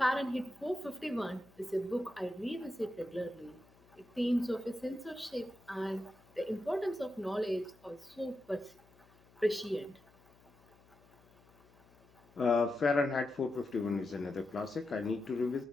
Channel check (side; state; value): left; noise; hum, 28 dB below the sound